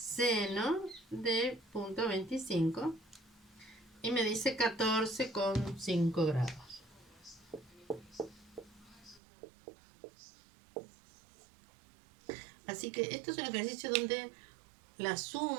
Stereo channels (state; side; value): drops out; left; at 9.2 s